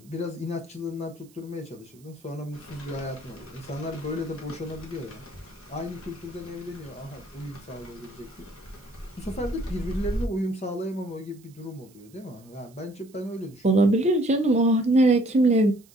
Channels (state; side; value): noise; right; hiss, 28 dB below the sound